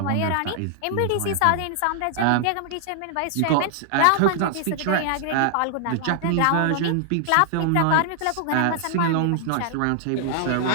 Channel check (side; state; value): both; different; correlation -0.01